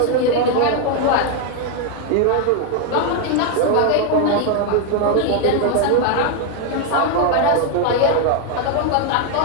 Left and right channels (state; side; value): different; both; correlation 0.01